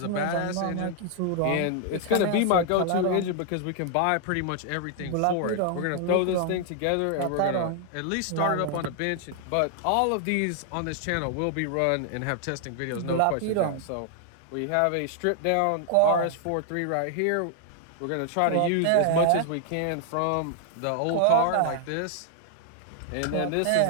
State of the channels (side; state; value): both; different; correlation 0.00